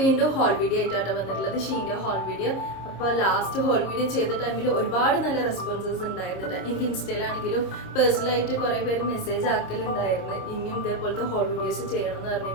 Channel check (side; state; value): right; late; 26 ms